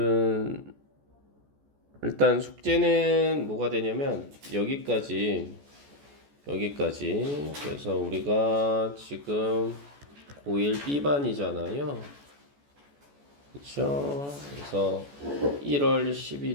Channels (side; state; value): left; late; 14 ms